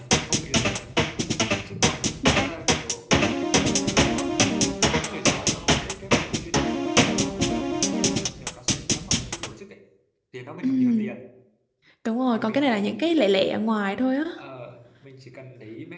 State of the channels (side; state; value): both; identical; correlation 1.00